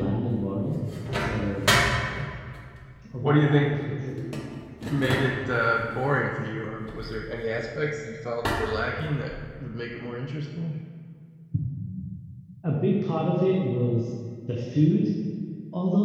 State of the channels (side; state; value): both; identical; correlation 1.00